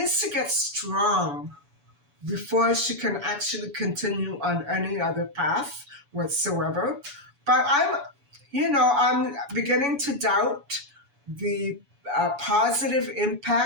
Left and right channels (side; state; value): left; late; 7.0 ms